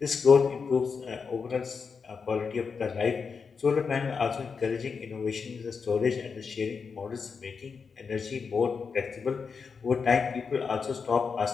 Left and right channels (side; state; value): right; quieter; 5.5 dB